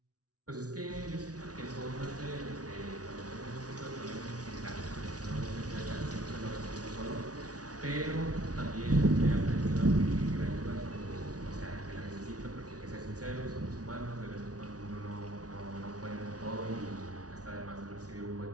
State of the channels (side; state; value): left; late; 0.68 ms